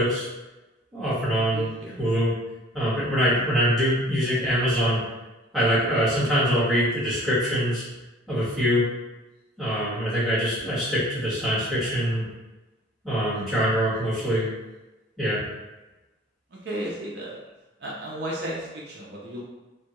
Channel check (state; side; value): normal; both; correlation 0.50